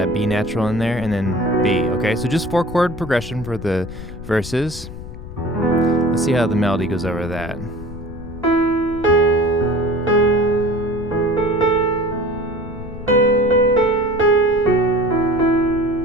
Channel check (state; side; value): noise; left; rumble, 13 dB below the sound